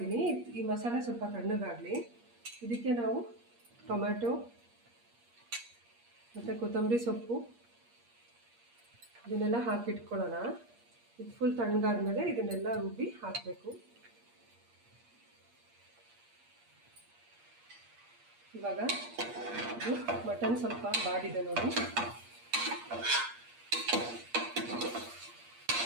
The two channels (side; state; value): left; late; 8.5 ms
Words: ಈ ಮಸಾಲೆ ಸ್ವಲ್ಪ ತಣ್ಣಗಾಗಲಿ. ಇದಕ್ಕೆ ನಾವು ಟೊಮ್ಯಾಟೊ ಮತ್ತು ಕೊತ್ತಂಬರಿ ಸೊಪ್ಪು ಇದನ್ನೆಲ್ಲ ಹಾಕಿಟ್ಕೊಳ್ಳೋಣ. ಇದು ಫುಲ್ ತಣ್ಣಗಾದ್ಮೇಲೆ ಇದನ್ನೆಲ್ಲ ರುಬ್ಬಿ ಹಾಕಬೇಕು. ಇವಾಗ ಇದು ಮಟನ್ ಸ್ವಲ್ಪ ಬಾಡಿದೆ ನೋಡಿ,